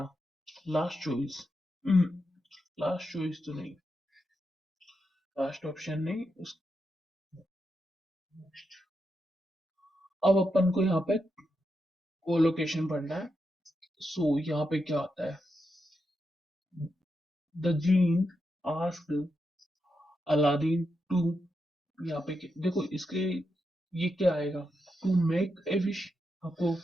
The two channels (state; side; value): normal; both; correlation 0.85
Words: लास्ट चॉइस, लास्ट चॉइस तो नहीं, लास्ट ऑप्शन नहीं उस। अब अपन को यहाँ पे कोलोकेशन पढ़ना है। सो यहाँ पे क्या आता है, the genie ask Aladdin to, यहाँ पे देखो इसके ये क्या आएगा, टू मेक ए विश। आपको